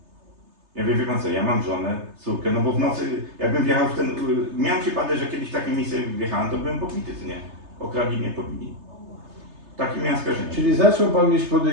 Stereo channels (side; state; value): left; late; 3.3 ms